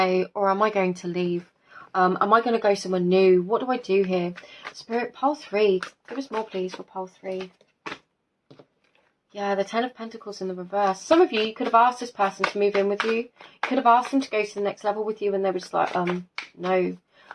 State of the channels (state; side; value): identical; both; correlation 1.00